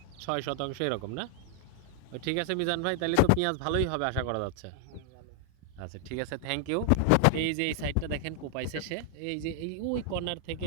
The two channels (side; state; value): both; different; correlation 0.00